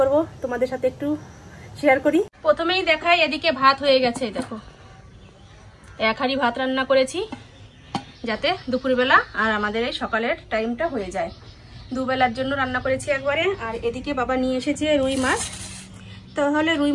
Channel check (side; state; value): both; identical; correlation 1.00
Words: তোমাদের সাথে একটু শেয়ার করি। প্রথমেই দেখাই, এদিকে ভাত হয়ে গেছে। দেখো, 1 হাঁড়ি ভাত রান্না করেছি, যাতে দুপুরবেলা আর আমাদের এই সকালের টাইমটা হয়ে যায়। 2 বেলার জন্য রান্না করেছি একবারে। আর এদিকে বাবা নিয়ে এসেছে রুই মাছ। তাহলে রুই